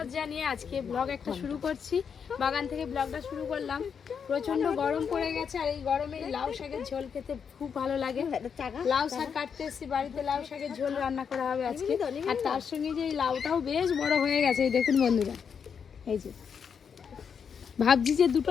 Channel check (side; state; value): right; quieter; 6.8 dB